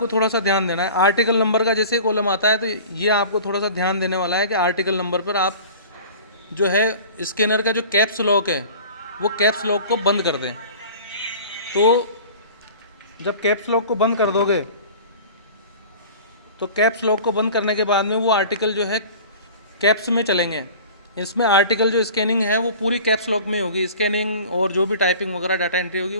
थोड़ा सा ध्यान देना है। आर्टिकल नंबर का जैसे कॉलम आता है तो ये आपको थोड़ा सा ध्यान देने वाला है कि आर्टिकल नंबर पर आप जो है स्कैनर का जो कैप्स लॉक है वो कैप्स लॉक को बंद कर दें। तो जब कैप्स लॉक को बंद कर दोगे तो कैप्स लॉक को बंद करने के बाद में वो आर्टिकल जो है कैप्स में चलेंगे। इसमें आर्टिकल जो स्कैनिंग है वो पूरी कैप्स लॉक में होगी, स्कैनिंग और जो भी टाइपिंग वगैरह डाटा एंट्री होगी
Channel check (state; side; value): inverted; both; correlation -0.41